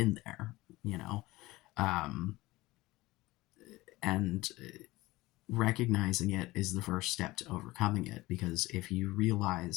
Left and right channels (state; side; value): quieter; right; 19.4 dB